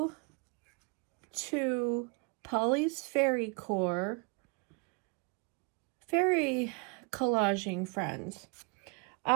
to Polly's Fairy Core fairy collaging friends.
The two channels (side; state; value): left; quieter; 33.7 dB